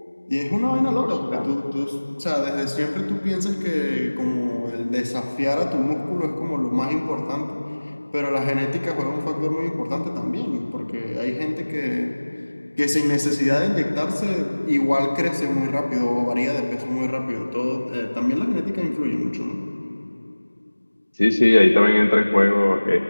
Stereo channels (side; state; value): both; inverted; correlation -1.00